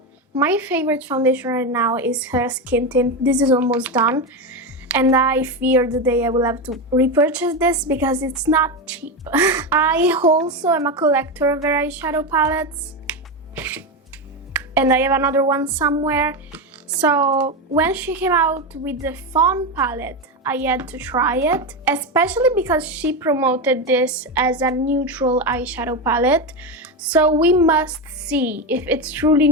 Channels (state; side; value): normal; both; correlation 0.14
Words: My favorite foundation right now is her skin tint. This is almost done, and I fear the day I will have to repurchase this because it's not cheap. I also am a collector of her eyeshadow palettes, and I have another one somewhere. So when she came out with the Fawn palette, I had to try it, especially because she promoted this as a neutral eyeshadow palette. So we must see if it's truly